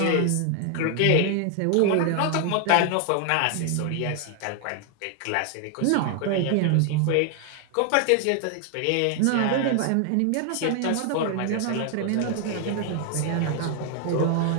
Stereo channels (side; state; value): both; different; correlation 0.00